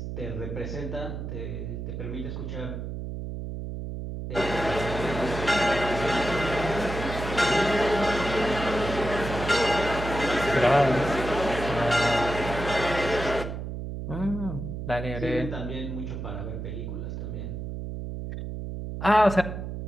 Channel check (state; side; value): noise; right; hum, 6 dB below the sound